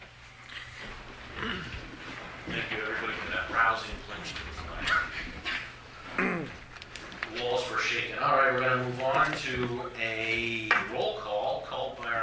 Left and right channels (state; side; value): identical; both; correlation 1.00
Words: Thank you, everybody, for that rousing pledge to the flag. The walls were shaken. All right, we're going to move on to a roll call called by